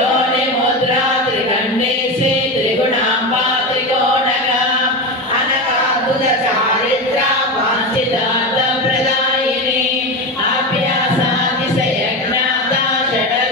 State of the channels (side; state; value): both; normal; correlation 0.20